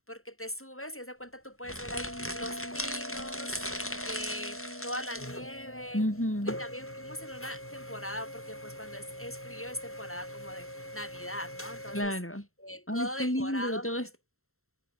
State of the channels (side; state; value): right; late; 0.62 ms